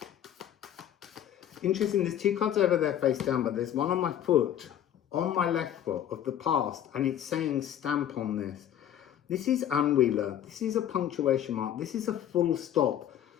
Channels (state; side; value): quieter; right; 10.6 dB